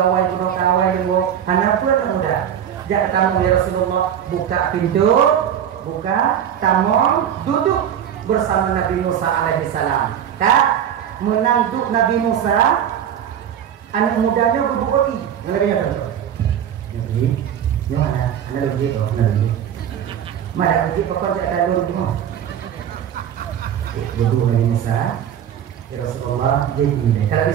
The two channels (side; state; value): left; quieter; 9.4 dB